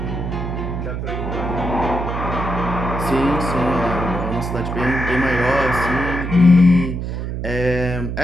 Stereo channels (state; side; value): noise; right; hum, 4 dB below the sound